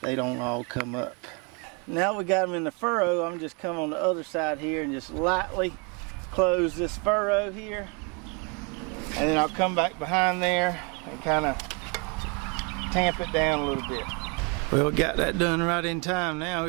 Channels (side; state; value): left; quieter; 33.3 dB